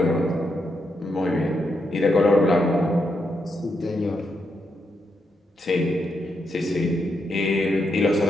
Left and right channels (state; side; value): normal; both; correlation 0.82